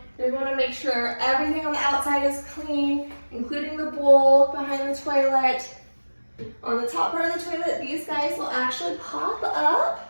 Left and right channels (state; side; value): inverted; both; correlation -1.00